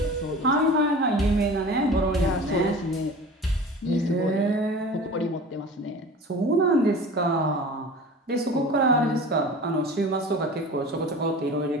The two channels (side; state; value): both; normal; correlation 0.38